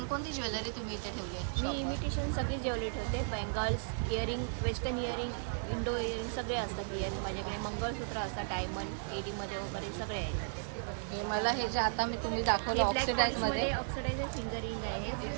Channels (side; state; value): left; silent; 54 dB below the other